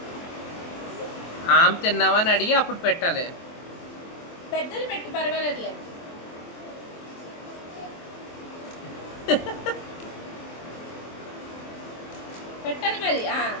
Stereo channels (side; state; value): right; late; 24 ms